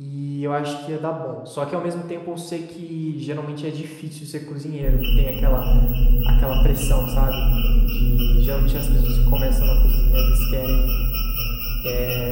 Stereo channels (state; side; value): identical; both; correlation 1.00